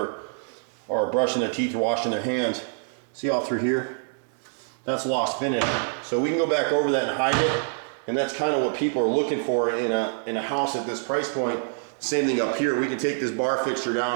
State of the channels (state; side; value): silent; left; digital silence